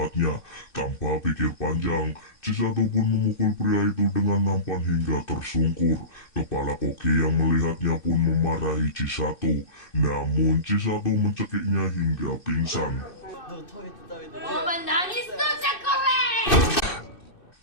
Tanpa pikir panjang, Chisato pun memukul pria itu dengan nampan hingga tersungkur. Kepala koki yang melihatnya pun memarahi Chisato. Namun Chisato mencekiknya hingga pingsan.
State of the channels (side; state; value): right; late; 2.6 ms